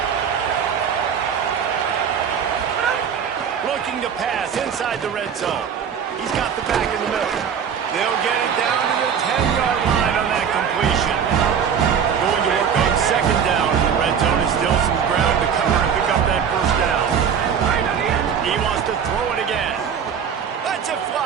Looking to pass inside the red zone. He's got the back in the middle. They'll get it down to the 10-yard line on that completion. Going to work on 2nd down in the red zone. Is still some ground to cover and pick up that first down. He wants to throw it again. Lets it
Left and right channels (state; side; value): quieter; left; 7.5 dB